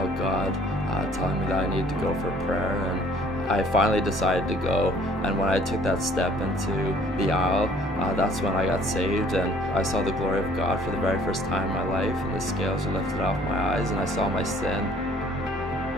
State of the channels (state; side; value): normal; both; correlation 0.56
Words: God telling me that I needed to go for prayer, and I finally decided to go. And when I took that step into the aisle, that's when I got saved, and I saw the glory of God for the very first time in my life, and the scales were lifted off my eyes, and I saw my sin.